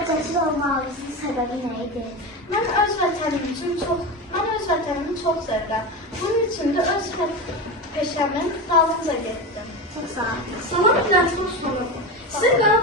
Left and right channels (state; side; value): normal; both; correlation 0.21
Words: cəsur olmağınızın səbəbi nə idi? Mən öz vətənimi çox sevirəm. Bunun üçün də öz peşəmin dalınca getdim. Çox sağ olun. Salam Güləşmə Osmanov. Sizin